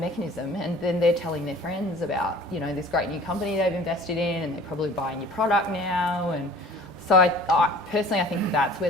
and then they're telling their friends about, you know, this great new company they've invested in, and they're probably buying your product now. And so I personally, I think that's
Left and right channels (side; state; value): both; normal; correlation 0.47